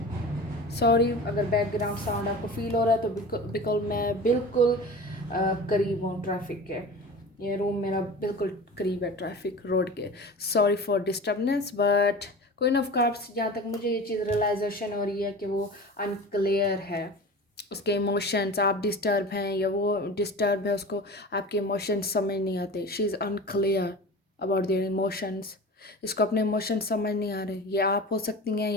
सॉरी अगर बैकग्राउंड साउंड आपको फील हो रहा है, तो बिल्कुल मैं बिल्कुल करीब हूँ ट्रैफिक के, ये रूम मेरा बिल्कुल करीब है ट्रैफिक रोड के। Sorry for disturbance, but queen of cups, जहाँ तक मुझे ये चीज़ रियलाइजेशन हो रही है कि वो अनक्लियर है, उसके इमोशंस, आप डिस्टर्ब हैं या वो डिस्टर्ब है, उसको आपके इमोशंस समझ नहीं आते, she is unclear about their emotions, इसको अपने इमोशंस समझ नहीं आ रहे। ये आप हो सकती हैं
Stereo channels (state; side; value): normal; both; correlation 0.35